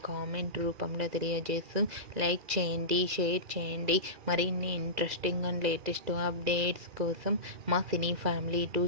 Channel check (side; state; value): left; late; 2.0 ms